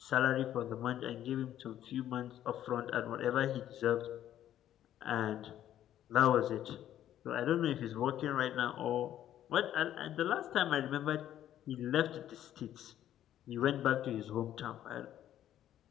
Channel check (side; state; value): right; quieter; 11.6 dB